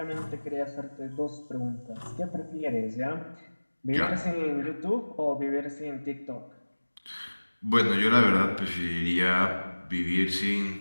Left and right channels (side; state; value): both; inverted; correlation -1.00